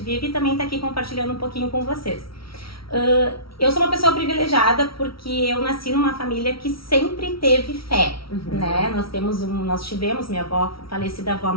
vive e também tá aqui compartilhando um pouquinho com vocês. Eu sou uma pessoa privilegiada porque eu nasci numa família que sempre teve fé, né? Nós tivemos minha avó, falecida avó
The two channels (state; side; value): late; right; 0.75 ms